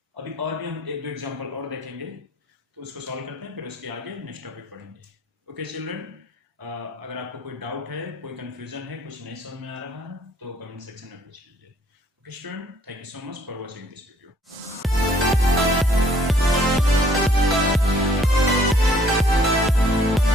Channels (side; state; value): both; normal; correlation 0.62